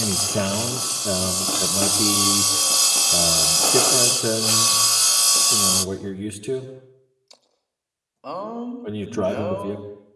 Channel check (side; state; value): both; identical; correlation 1.00